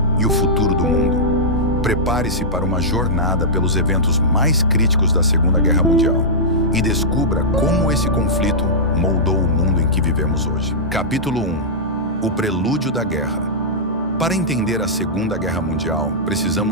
e o futuro do mundo? Prepare-se para uma jornada pelos eventos mais críticos da Segunda Guerra Mundial e descubra como esse conflito moldou o mundo em que vivemos hoje. Capítulo 1. O prelúdio da guerra. Para entender a Segunda Guerra Mundial,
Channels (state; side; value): normal; both; correlation -0.12